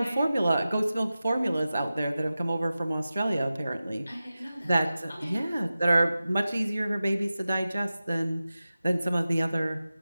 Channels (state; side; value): inverted; both; correlation -0.94